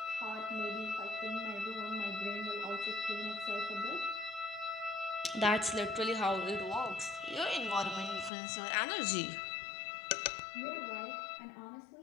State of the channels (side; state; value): right; drops out; at 8.3 s